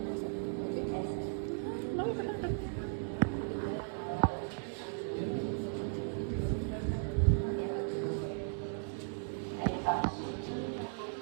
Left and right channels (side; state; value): left; silent; digital silence